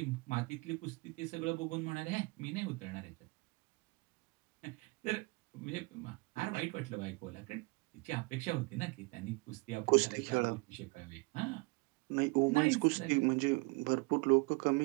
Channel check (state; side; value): quieter; left; 27.7 dB